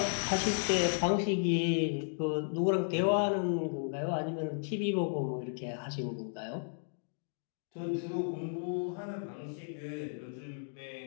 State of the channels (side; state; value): right; silent; digital silence